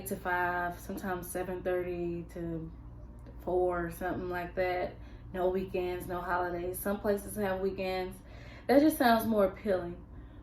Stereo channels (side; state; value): both; identical; correlation 1.00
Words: to 5, sometimes 7:30 to 4, something like that. No weekends, no holidays. Some places have weekends. That just sounds more appealing.